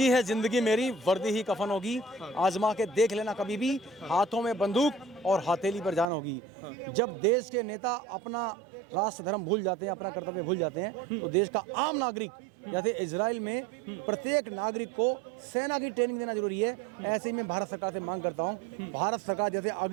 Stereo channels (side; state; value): left; drops out; at 6.1 s